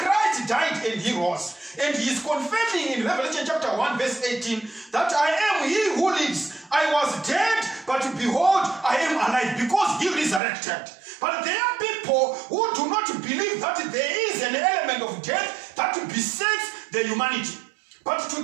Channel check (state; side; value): drops out; left; at 10.4 s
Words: died and he rose. And he is confirming in Revelation chapter 1 verse 18 that I am he who lives. I was dead, but behold, I am alive, because he resurrected. But there are people who do not believe that there is an element of death that besets the humanity. But